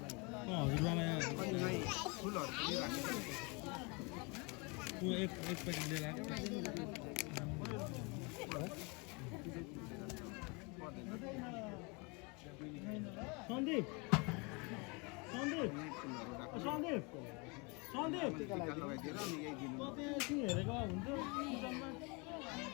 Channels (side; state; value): right; quieter; 30.1 dB